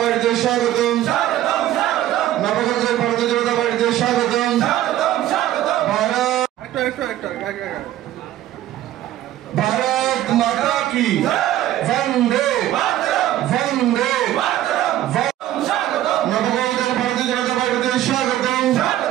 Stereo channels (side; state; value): left; quieter; 13.2 dB